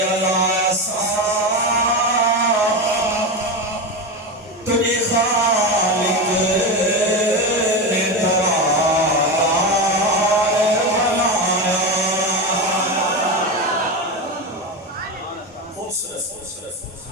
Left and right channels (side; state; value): both; normal; correlation 0.18